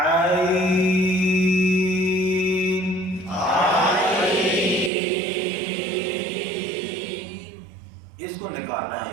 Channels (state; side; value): drops out; left; at 4.9 s